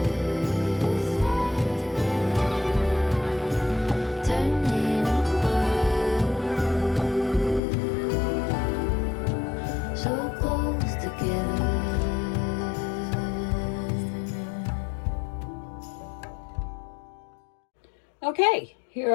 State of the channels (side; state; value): right; drops out; at 7.6 s